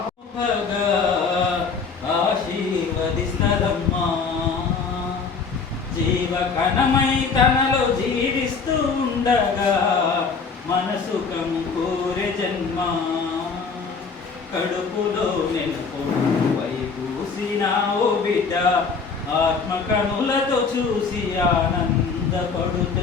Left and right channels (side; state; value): right; quieter; 5.1 dB